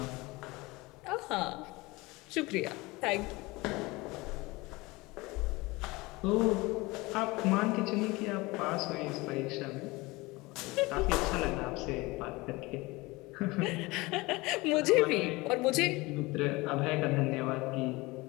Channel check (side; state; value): right; quieter; 22.6 dB